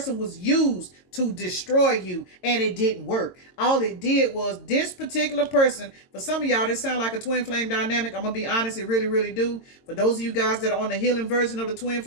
was used to destroy you, and it didn't work. All it did was this particular person, for some of y'all, this sound like a twin flame dynamic. I'm going to be honest, it really, really do. For those of you guys that are on the healing version of the twin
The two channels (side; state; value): right; late; 22 ms